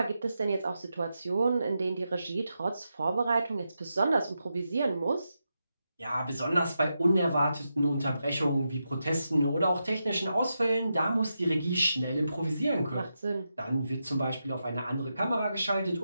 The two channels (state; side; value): inverted; both; correlation -0.87